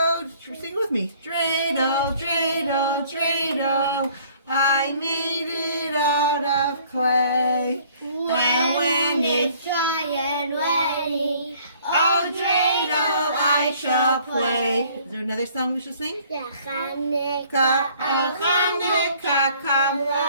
sing with me. Dreidel, dreidel, dreidel. I made it out of clay. And when it's dry and ready, oh dreidel I shall play. Is there another song we should sing? yeah, Hanukkah, Oh Hanukkah, come.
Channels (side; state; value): both; inverted; correlation -0.57